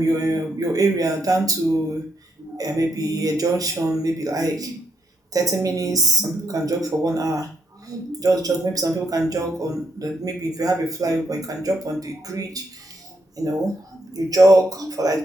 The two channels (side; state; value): both; normal; correlation 0.77